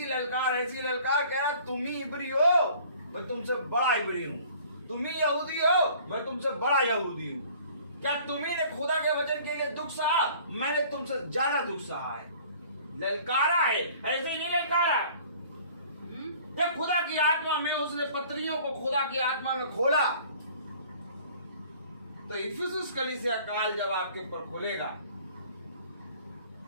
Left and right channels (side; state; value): both; inverted; correlation -0.51